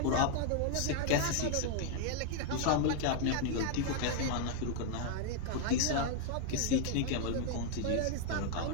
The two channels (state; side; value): different; both; correlation 0.00